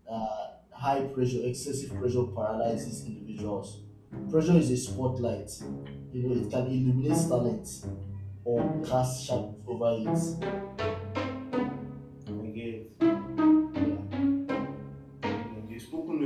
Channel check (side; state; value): both; identical; correlation 1.00